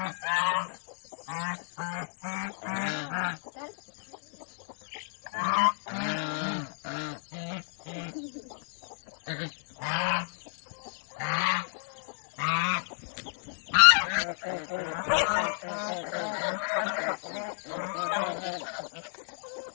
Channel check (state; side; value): silent; right; 57 dB below the other